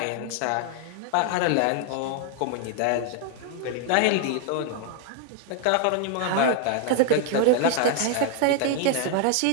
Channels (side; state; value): both; different; correlation 0.00